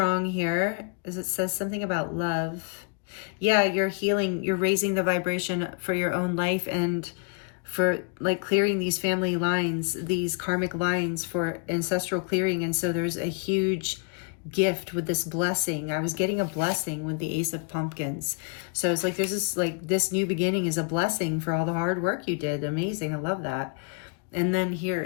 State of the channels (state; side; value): quieter; right; 36.4 dB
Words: here, as it says something about love. Yeah, you're healing. You're raising the vibration for your own life and for like clearing these family lines, these karmic lines for ancestral clearing. And so there's a huge gift with this blessing. I was getting a blessing with the Ace of Pumpkins. So it's like there's this new beginning is a blessing for all the hard work you did. Amazing. I love that. And then here